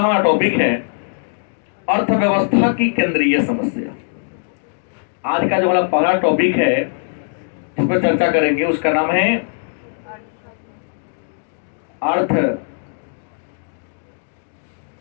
टॉपिक है अर्थव्यवस्था की केंद्रीय समस्या। आज का जो हमारा पहला टॉपिक है जिस पर चर्चा करेंगे उसका नाम है अर्थव्यवस्था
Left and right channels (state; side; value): silent; right; digital silence